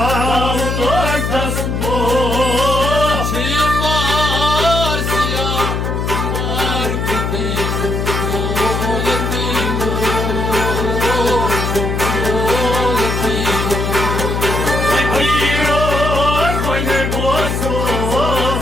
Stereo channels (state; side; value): noise; left; hum, 1 dB below the sound